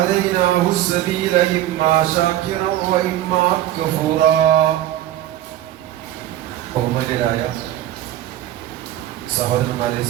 السبيل إما شاكرا وإما كفورا ബഹുമാന്യരായ സഹോദരന്മാരെ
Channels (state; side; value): quieter; left; 13.1 dB